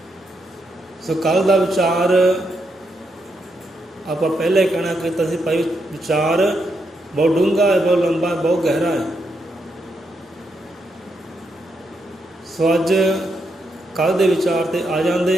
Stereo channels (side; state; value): both; normal; correlation 0.81